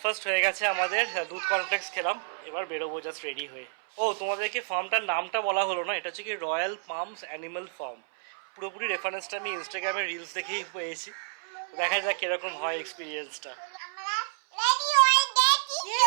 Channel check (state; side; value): silent; left; 58 dB below the other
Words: হয়ে গেছে আমাদের, দুধ কর্নফ্লেক্স খেলাম, এবার বেরোবো জাস্ট রেডি হয়ে। ও, তোমাদেরকে ফার্মটার নামটা বলা হলো না, এটা হচ্ছে কি রয়্যাল পামস অ্যানিমাল ফার্ম। পুরোপুরি রেফারেন্সটা আমি ইনস্টাগ্রামের রিলস দেখেই পেয়েছি। দেখা যাক কিরকম হয় এক্সপিরিয়েন্সটা। আমরা রেডি হয়ে গেছি।